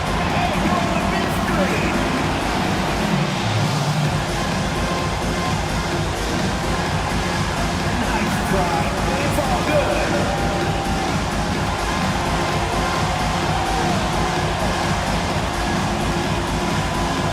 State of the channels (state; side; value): identical; both; correlation 1.00